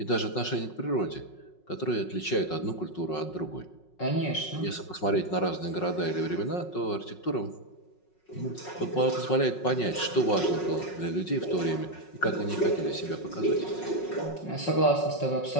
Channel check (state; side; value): late; right; 5.5 ms